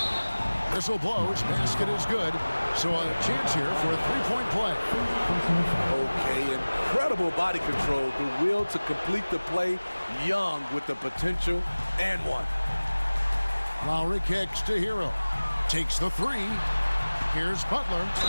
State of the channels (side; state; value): both; inverted; correlation -1.00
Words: whistle blows. Basket is good. So a chance here for a three-point play. Okay, incredible body control. The will to complete the play. Young with the potential and one. Lowry kicks to Hero. Takes the three. Here's Butler.